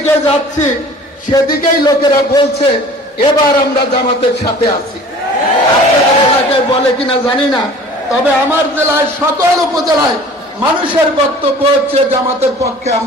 যাচ্ছি সেদিকেই লোকেরা বলছে এবার আমরা জামাতের সাথে আছি। আপনাদের এলাকায় বলে কিনা জানি না, তবে আমার জেলায় সকল উপজেলায় মানুষের বক্তব্য হচ্ছে জামাতের পক্ষে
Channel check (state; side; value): normal; both; correlation 0.46